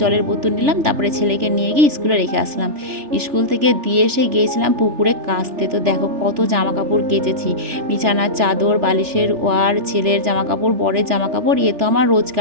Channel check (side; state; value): left; late; 3.4 ms